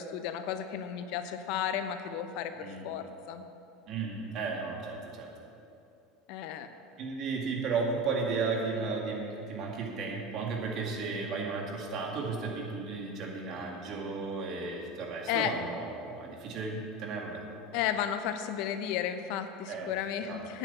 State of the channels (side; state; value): both; normal; correlation 0.23